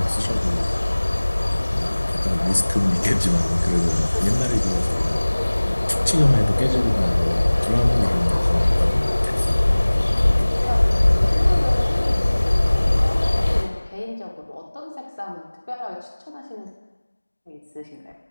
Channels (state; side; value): inverted; both; correlation -1.00